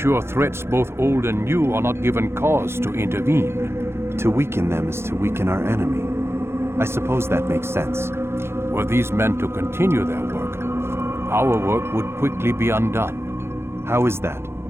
threats both old and new are not given cause to intervene. To weaken them is to weaken our enemy. I suppose that makes sense. Were these men to continue their work, our work would quickly be undone. How is that?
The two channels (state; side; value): late; left; 0.12 ms